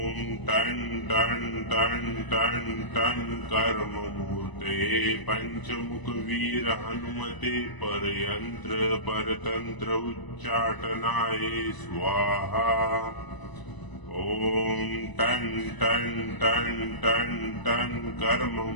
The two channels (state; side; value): late; right; 1.0 ms